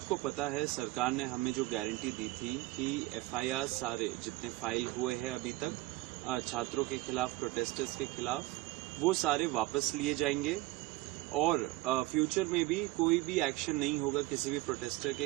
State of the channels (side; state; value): left; quieter; 19.0 dB